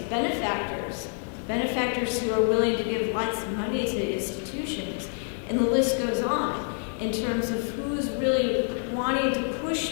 benefactors who are willing to give lots of money to institutions, and the list goes on in terms of who's really wanting to push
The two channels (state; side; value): silent; right; 60 dB below the other